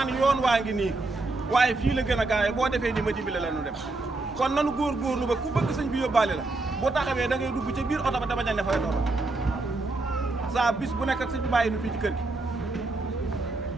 yoon waa ngi nii waaye fii la gën a gaawee boo defee ni ma dimbale la nu dem kon nanu góorgóorlu ba ku bëgg sëñ bi yóbbaale la bu taxawee da ngay dugg ca biir oto ba dama ne fay doon saa bis bu nekk ak sëñ bi bàyyi nu fii ci kër gi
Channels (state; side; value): quieter; left; 3.2 dB